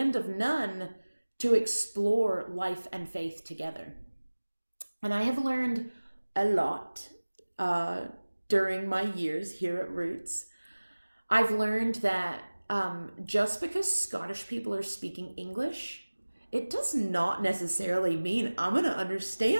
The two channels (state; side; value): inverted; both; correlation -1.00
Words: of none to explore life and faith together. And I have learned a lot during my years here at Roots. I've learned that just because Scottish people are speaking English, it does not necessarily mean I'm going to